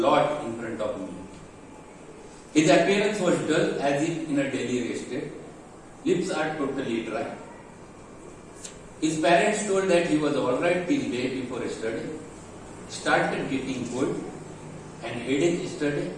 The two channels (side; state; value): both; identical; correlation 1.00